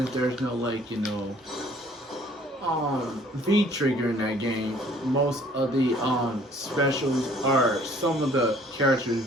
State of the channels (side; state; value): both; normal; correlation 0.56